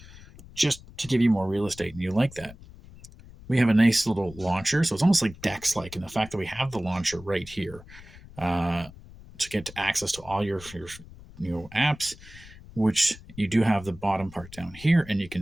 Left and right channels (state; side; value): noise; left; rumble, 19 dB below the sound